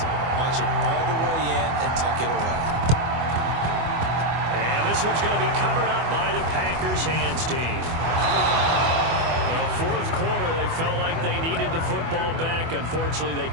Watch it all the way in and tuck it away. And this one's going to be covered up by the Packers hands team. Well, 4th quarter, they felt like they needed the football back. Unfortunately, they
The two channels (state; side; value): late; left; 24 ms